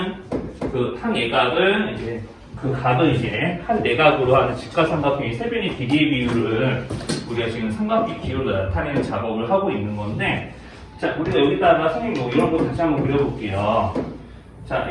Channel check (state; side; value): identical; both; correlation 1.00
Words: 그 한 예각을 이제 그 각을 이제 한 내각으로 하는 직각삼각형의 세변의 길이의 비율을 우리가 지금 삼각비 기호로 나타내는 작업을 하고 있는 건데, 자, 우리가 여기다가 선생님 뭐 이런 거 다시 한번 그려볼게요. 자,